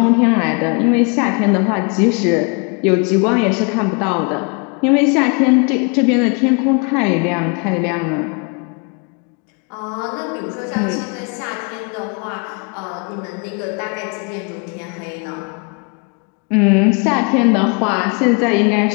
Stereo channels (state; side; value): quieter; right; 33.9 dB